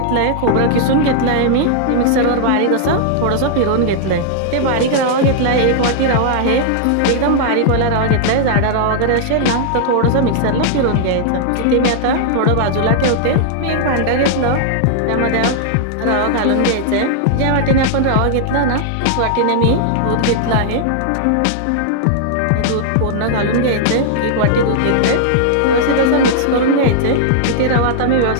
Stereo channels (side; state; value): both; different; correlation -0.01